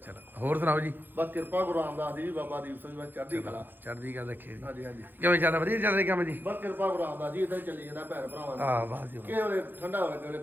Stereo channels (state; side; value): late; left; 0.092 ms